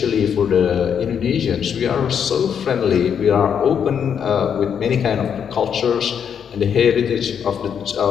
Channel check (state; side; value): quieter; right; 7.8 dB